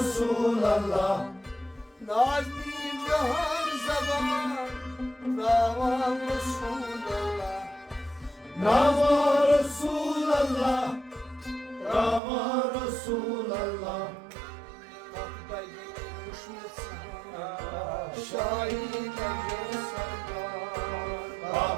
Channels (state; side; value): drops out; left; at 12.2 s